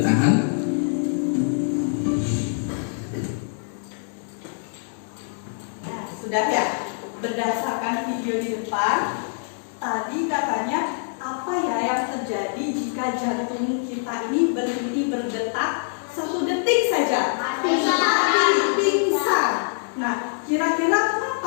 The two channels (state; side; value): silent; right; digital silence